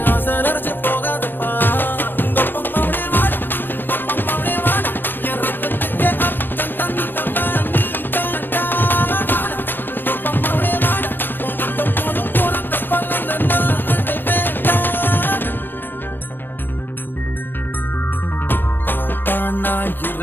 ஆசை நரைச்சு போகாதப்பா உங்க அப்பம்மாவே வாடா அப்பம்மாவே வாடா என் ரத்தத்துக்கு அர்த்தம் தந்தவா நீ தாண்டா வாடா உங்க அப்பம்மாவே வாடா உனக்கு போதும் பிறந்த பலன் நான் அதை வேண்டாம் பாப்பா நான்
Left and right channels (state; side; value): late; right; 0.096 ms